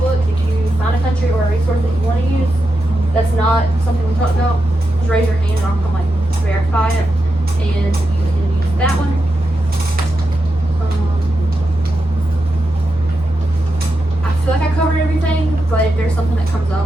If you find a country or a resource that you want to use, that's not something we talked about, just raise your hand and I'll come like verify it, and you can use that one. I feel like I covered everything, but if there's something that comes up,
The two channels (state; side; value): normal; both; correlation 0.87